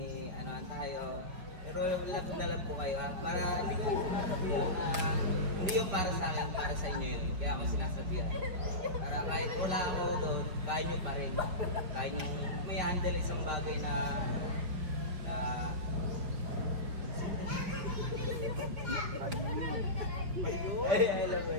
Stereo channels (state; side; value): late; left; 5.3 ms